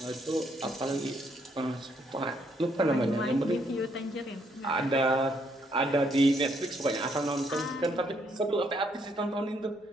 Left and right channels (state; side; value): normal; both; correlation 0.72